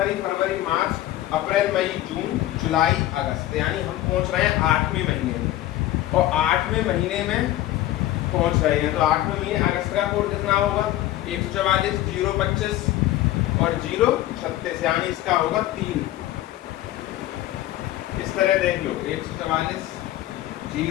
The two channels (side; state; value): right; quieter; 14.6 dB